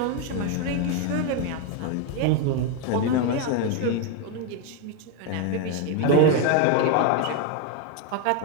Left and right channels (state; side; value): different; both; correlation 0.02